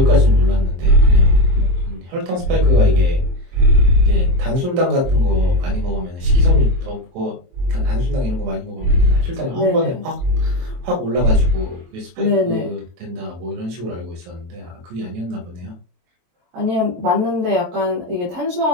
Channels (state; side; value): late; left; 23 ms